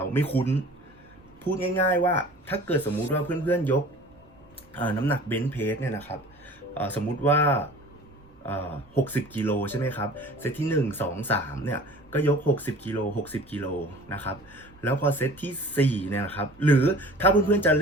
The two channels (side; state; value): both; normal; correlation 0.45